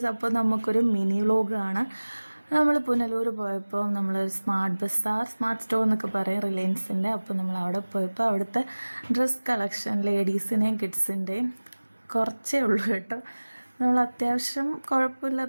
അപ്പോൾ നമുക്കൊരു mini വ്ലോഗാണ്. നമ്മൾ പുനലൂർ പോയപ്പോൾ നമ്മളൊരു സ്മാർട്ട് സ്റ്റോർ എന്നൊക്കെ പറയും, റിലയൻസിൻ്റെ. അപ്പോൾ നമ്മൾ അവിടെ പോയപ്പോൾ അവിടുത്തെ ഡ്രസ് കളക്ഷൻ ലേഡീസിൻ്റെയും കിഡ്സിൻ്റെയും കുറച്ചേ ഉള്ളൂ കേട്ടോ. നമ്മൾ അത്യാവശ്യം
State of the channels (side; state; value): both; inverted; correlation -1.00